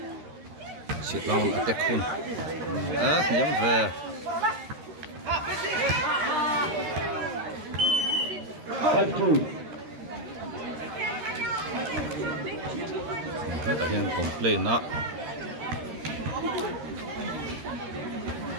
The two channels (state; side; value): late; left; 13 ms